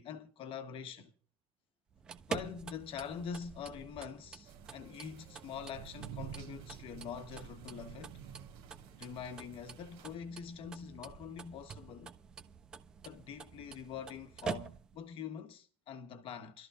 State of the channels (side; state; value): both; normal; correlation 0.42